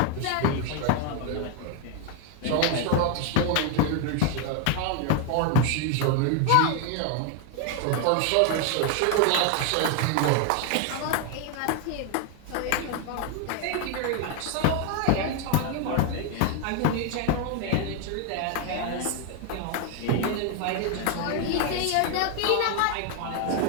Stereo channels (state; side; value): different; both; correlation 0.01